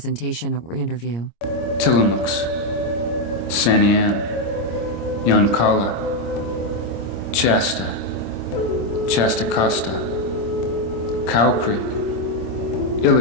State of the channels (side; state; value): right; late; 26 ms